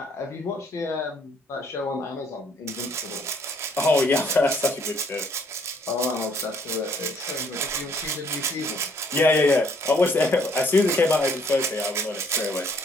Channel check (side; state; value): both; normal; correlation 0.64